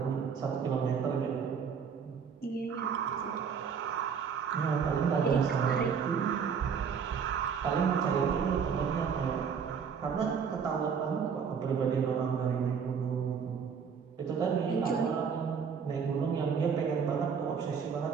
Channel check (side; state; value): left; quieter; 6.5 dB